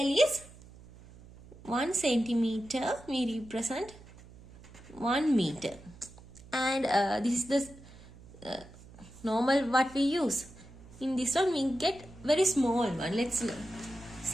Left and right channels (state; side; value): noise; right; hum, 20 dB below the sound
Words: is 1 centimeter. We represent 1 meter, and this is the normal what we use. In this one we get very small one. Let's